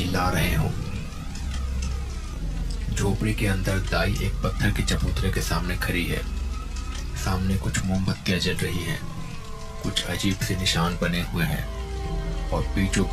रहे हो। झोपड़ी के अंदर दाई एक पत्थर के चबूतरे के सामने खड़ी है। सामने कुछ मोमबत्तियां जल रही हैं, कुछ अजीब से निशान बने हुए हैं और बीचों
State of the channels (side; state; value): both; identical; correlation 1.00